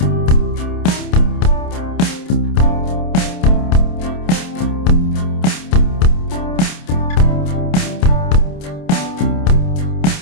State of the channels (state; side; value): late; right; 28 ms